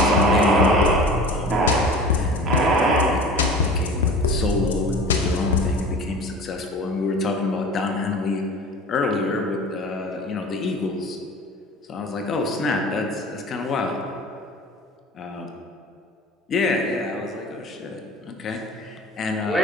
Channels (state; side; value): normal; both; correlation 0.39